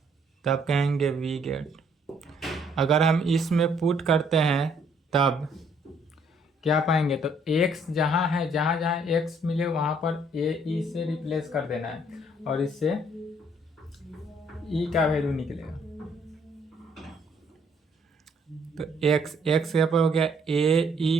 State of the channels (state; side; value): normal; both; correlation 0.65